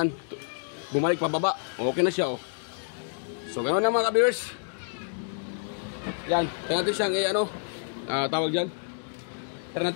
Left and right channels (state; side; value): silent; right; digital silence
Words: bumalik pababa, okay na siya oh. So ganon na mga ka-viewers. Yan, tingnan natin siyang ano, tawag dyan, tingnan